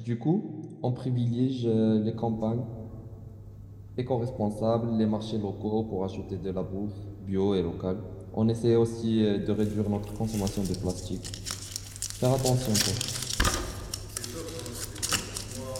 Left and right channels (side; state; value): both; identical; correlation 1.00